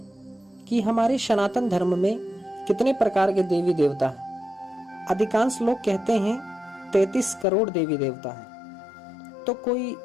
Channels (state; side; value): drops out; right; at 7.5 s